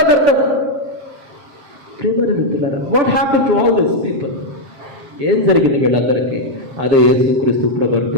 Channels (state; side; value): late; left; 7.4 ms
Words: వ్యర్థం. ప్రియమైన మిత్రులారా, what happen to all this people? ఏం జరిగింది వీళ్ళందరికీ? అదే యేసుక్రీస్తు ప్రభువు